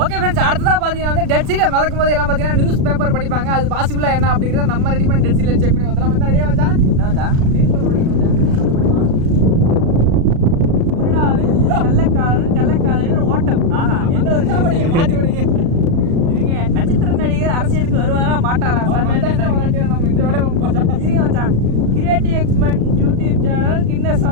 ஃப்ரெண்ட்ஸ், அடுத்ததாக பார்த்தீங்கன்னா வந்து டெட் சீல மிதக்கும் போது எல்லாம் பார்த்தீங்கன்னா நியூஸ் பேப்பர் படிப்பாங்க. அது பாசிபிளாக என்ன அப்படிங்கிறத நம்ம ரெடி பண்ணி டெட் சீல செக் பண்ணி பார்த்தலாம். மச்சான் ரெடியாக மச்சான்? என்ன மச்சான்? நியூஸ் பேப்பர் படிக்கணும் மச்சான். கள்ளக்காதல் ஓட்டம். ஆஹா, என்ன ஒரு விஷயம் படிக்க மாற்றி படிக்க இருங்க. நட்சத்திர நடிகர் அரசியலுக்கு வருவாரா மாட்டாரா? நம்ம இந்த வேலை இருங்க மச்சான். கிரியேட்டிவ் எக்ஸ்பெரிமெண்ட் யூடியூப் சேனல் கின்ன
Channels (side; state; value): left; late; 36 ms